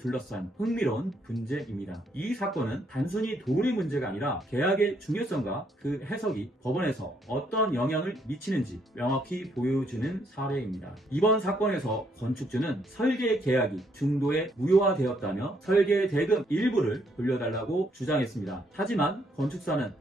흥미로운 분쟁입니다. 이 사건은 단순히 돈의 문제가 아니라 계약의 중요성과 그 해석이 법원에서 어떤 영향을 미치는지 명확히 보여주는 사례입니다. 이번 사건에서 건축주는 설계 계약이 중도에 무효화되었다며 설계 대금 일부를 돌려달라고 주장했습니다. 하지만 건축사는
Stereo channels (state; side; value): normal; both; correlation 0.71